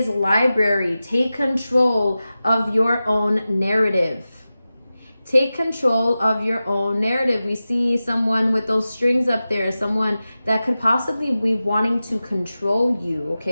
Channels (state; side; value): inverted; both; correlation -0.94